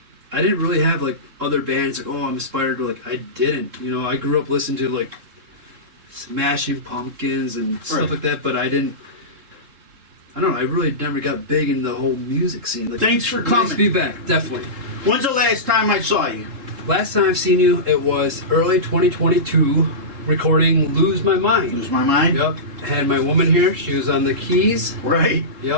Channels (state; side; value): late; left; 3.7 ms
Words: I didn't really have like other bands like, oh, I'm inspired to, like, I didn't. You know, I grew up listening to like Smashing Pumpkins and stuff like that, but I don't know, I really never got big in the whole music scene. Like, Thanks for coming. Nice to be back, definitely. When's the last time I saw you? Last time I've seen you, it was early 2022, recording Lose My Mind. Lose My Mind? Yep. Had my woman here, she was on the keys. Right.